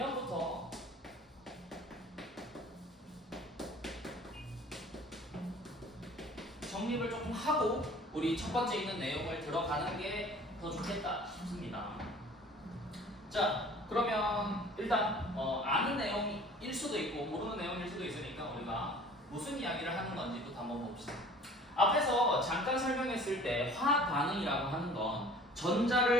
정립을 조금 하고 우리 첫 번째 있는 내용을 들어가는 게 더 좋겠다 싶습니다. 자, 그러면 일단 아는 내용일 수도 있고 모르는 내용일 수도 있으니까 우리가 무슨 이야기를 하는 건지부터 한번 봅시다. 앞에서 잠깐 설명했을 때 화학 반응이라고 하는 건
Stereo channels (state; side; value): normal; both; correlation 0.48